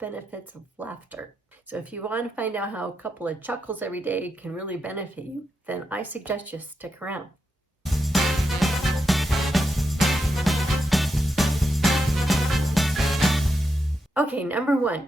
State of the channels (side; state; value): both; normal; correlation 0.85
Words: benefits of laughter. So if you want to find out how a couple of chuckles every day can really benefit you, then I suggest you stick around. Okay, number